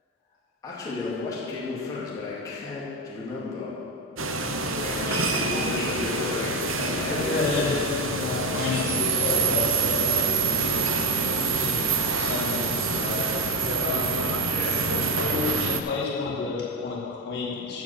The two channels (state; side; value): normal; both; correlation 0.15